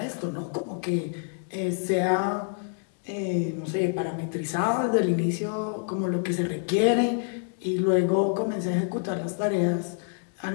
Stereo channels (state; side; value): silent; right; 60 dB below the other